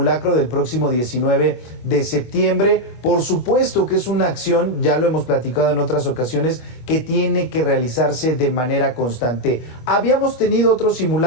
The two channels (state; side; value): late; right; 25 ms